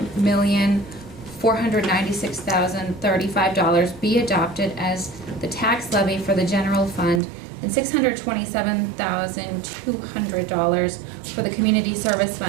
be adopted as the tax levy for the general fund and $627,200 for the community service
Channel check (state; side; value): drops out; left; at 7.2 s